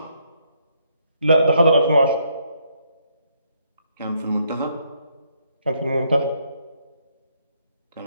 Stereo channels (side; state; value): both; inverted; correlation -0.72